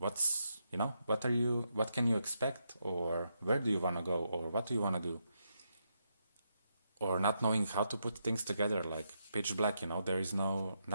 what can you expect, or where do you want to go, or what do you want to do, or not knowing how to put things together, like pitch black. There is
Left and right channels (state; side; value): inverted; both; correlation -0.81